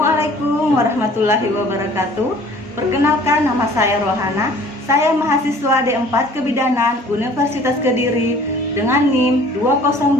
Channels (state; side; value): normal; both; correlation 0.51